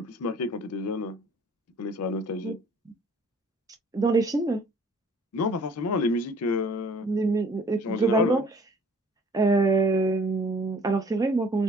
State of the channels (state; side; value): normal; both; correlation 0.54